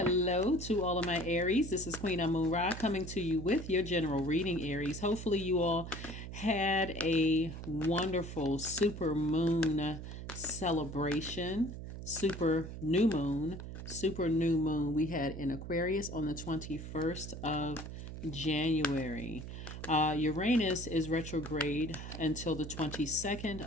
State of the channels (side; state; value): right; noise; hum, 9 dB below the sound